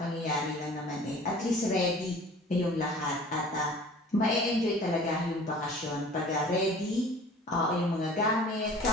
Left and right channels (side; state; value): both; normal; correlation 0.46